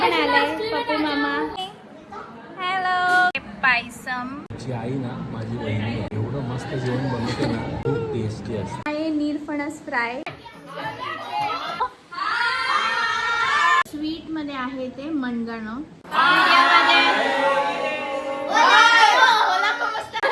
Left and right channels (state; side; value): identical; both; correlation 1.00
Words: आलाय, पप्पू मामा. हॅलो. पायसम. माझी आई ना, माझी बहिणी एवढं मस्त जेवण बनवते ना, खूप टेस्टी असते. आहे नीरफणस फ्राय. स्वीट मध्ये आहे ते मनगणं.